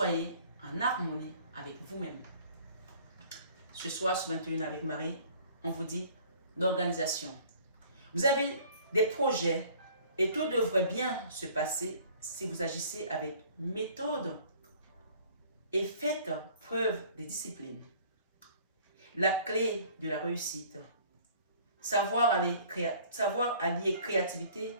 en harmonie avec vous-même. Ce soir, ce 21 avec Marie, on vous dit l'organisation. Vous avez des projets et tout devrait bien se passer si vous agissez avec méthode et faites preuve de discipline. La clé de la réussite, savoir allier créativité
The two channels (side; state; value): both; inverted; correlation -0.53